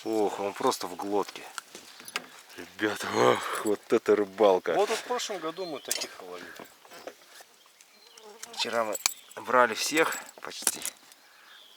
Ох, он просто в глотке. Ребята, ох, вот это рыбалка. Вот в прошлом году мы таких ловили. Вчера мы брали всех почти.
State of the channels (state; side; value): identical; both; correlation 1.00